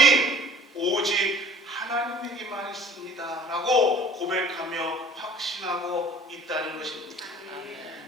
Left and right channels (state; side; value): normal; both; correlation 0.48